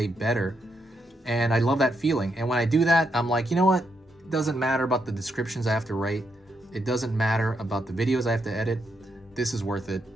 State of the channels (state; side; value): normal; both; correlation 0.80